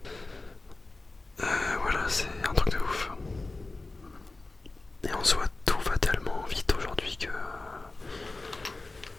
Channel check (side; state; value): right; quieter; 3.3 dB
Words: Voilà, c'est un truc de ouf. Et en soi, tout va tellement vite aujourd'hui que...